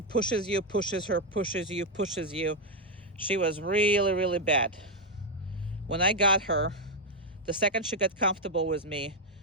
you, pushes her, pushes you, pushes you. She was really, really bad. When I got her, the second she got comfortable with me,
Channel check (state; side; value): normal; both; correlation 0.02